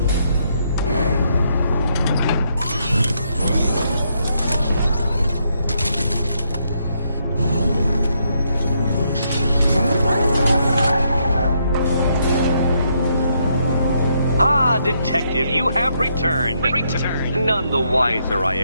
Detective, you have returned. None the wiser, I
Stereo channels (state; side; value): inverted; both; correlation -0.76